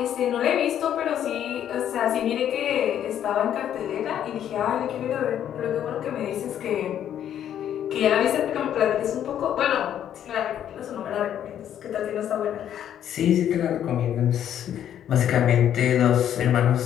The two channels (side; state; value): right; quieter; 10.2 dB